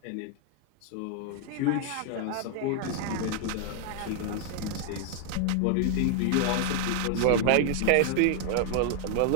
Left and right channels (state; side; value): different; both; correlation 0.00